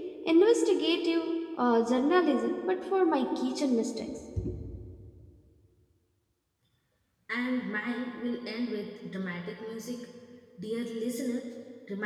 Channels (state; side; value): identical; both; correlation 1.00